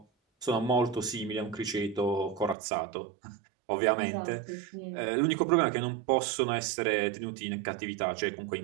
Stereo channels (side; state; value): left; drops out; at 2.6 s